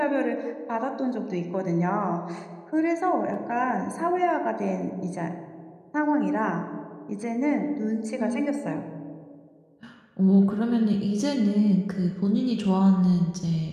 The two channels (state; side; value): identical; both; correlation 1.00